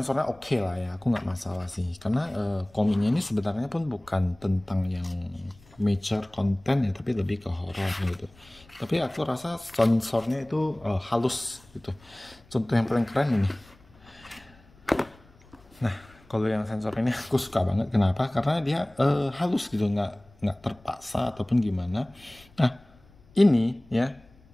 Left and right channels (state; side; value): noise; left; rumble, 27 dB below the sound